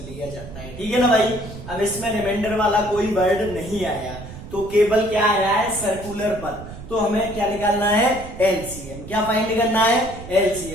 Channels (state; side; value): noise; right; rumble, 13 dB below the sound